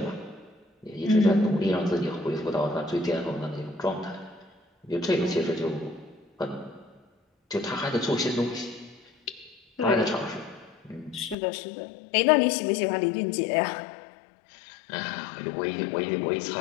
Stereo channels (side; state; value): right; drops out; at 11.4 s